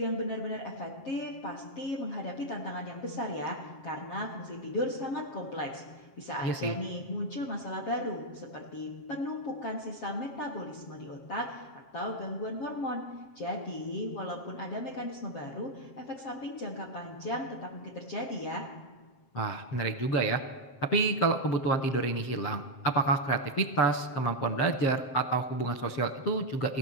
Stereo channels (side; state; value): right; late; 7.5 ms